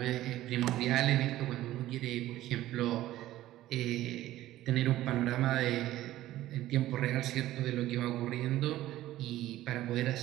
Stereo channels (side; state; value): left; quieter; 14.9 dB